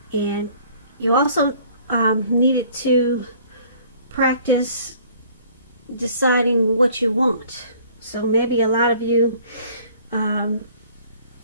And you also needed to practice deciding what you want. So maybe a lot of you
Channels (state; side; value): inverted; both; correlation -0.54